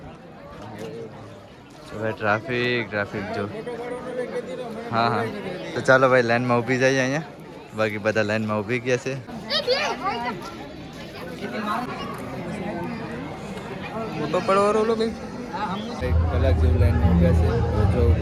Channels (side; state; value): both; identical; correlation 1.00